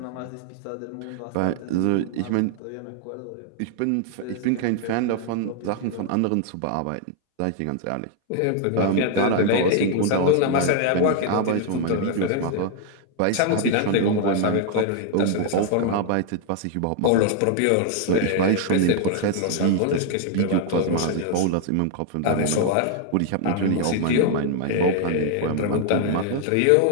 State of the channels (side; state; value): both; different; correlation 0.00